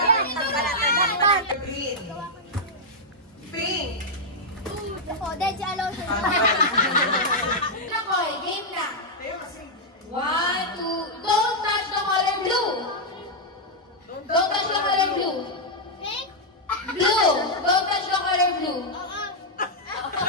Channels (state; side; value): normal; both; correlation -0.04